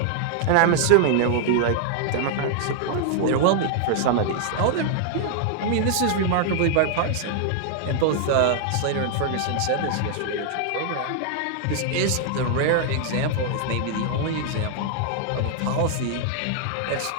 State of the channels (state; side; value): different; both; correlation 0.00